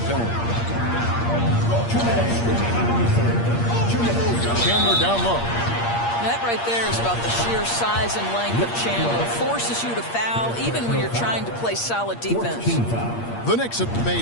penalty. Chandler down low. That right there is about the sheer size and length of Chandler. Forces you to foul even when you're trying to play solid defense. The Knicks have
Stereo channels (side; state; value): right; late; 8.6 ms